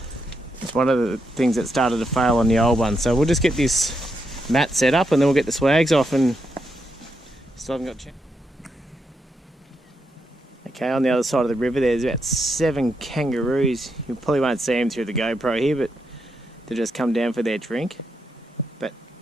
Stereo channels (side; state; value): both; normal; correlation 0.82